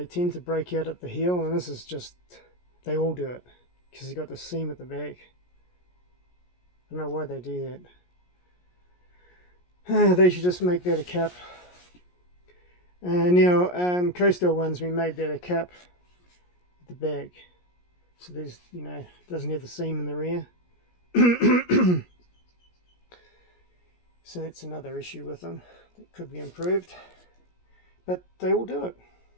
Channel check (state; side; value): late; right; 17 ms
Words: tend to break out at the heel, and this is just, they all do it, because they've got the seam at the back. I don't know why they do that. They should just make that a cap. Now, coastal ones, we made that a cap at the back, so there's, you know, it doesn't have the seam in the rear. So that's another issue with them that could be improved, but they all do it.